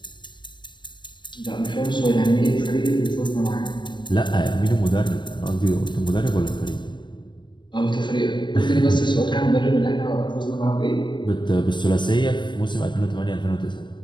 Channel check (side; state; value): right; late; 0.22 ms